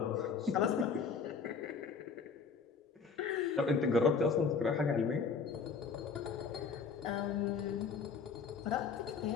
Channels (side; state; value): right; quieter; 5.4 dB